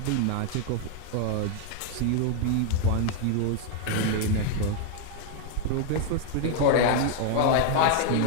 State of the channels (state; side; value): different; both; correlation 0.00